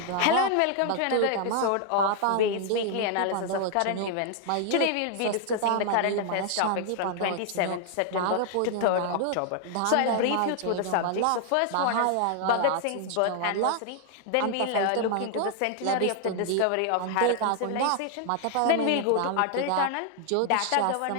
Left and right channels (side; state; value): both; different; correlation 0.00